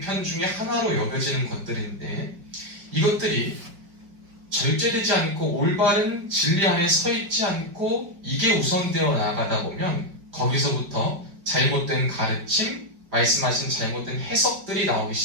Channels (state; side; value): late; left; 5.0 ms